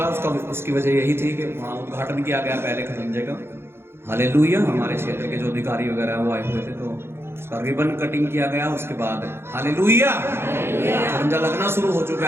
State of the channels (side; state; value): left; late; 0.12 ms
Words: उसकी वजह यही थी कि वहाँ उद्घाटन किया गया पहले खड़ंजे का। हालेलुया। हमारे क्षेत्र के जो अधिकारी वगैरह वो आए हुए थे, तो उसका रिबन कटिंग किया गया, उसके बाद हालेलुया झंडा लगना शुरू हो चुका